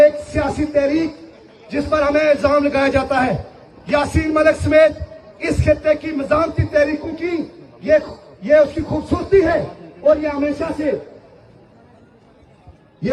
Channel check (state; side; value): identical; both; correlation 1.00